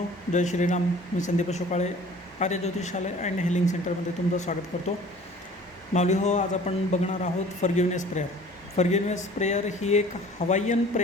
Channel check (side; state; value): both; normal; correlation 0.48